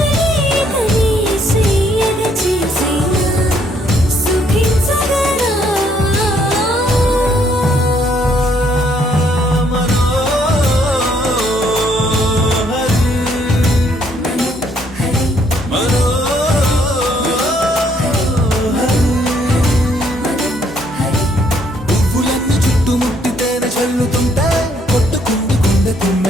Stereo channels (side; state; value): both; normal; correlation 0.68